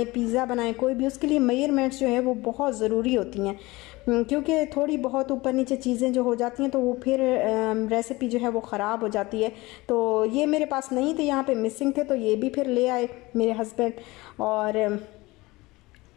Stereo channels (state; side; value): quieter; right; 21.3 dB